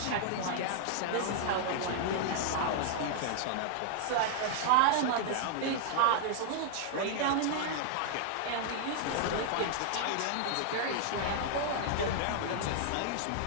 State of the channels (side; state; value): both; different; correlation -0.01